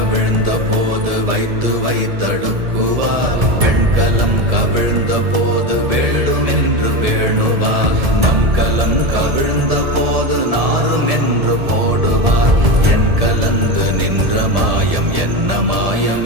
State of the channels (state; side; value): late; left; 1.7 ms